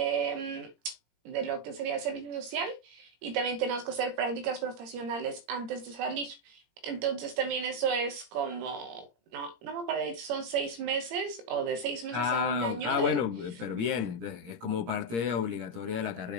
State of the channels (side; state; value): left; late; 17 ms